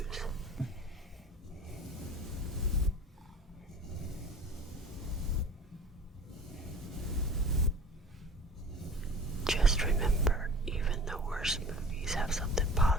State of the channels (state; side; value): normal; both; correlation 0.42